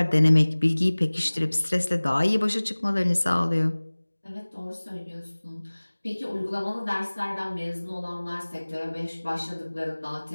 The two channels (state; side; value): inverted; both; correlation -1.00